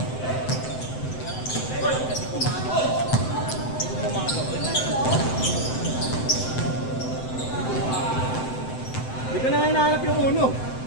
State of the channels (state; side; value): late; right; 7.8 ms